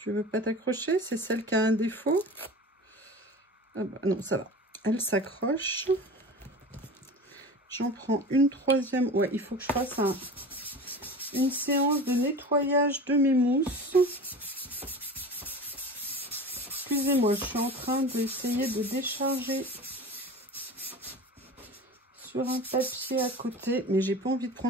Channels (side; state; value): both; normal; correlation 0.34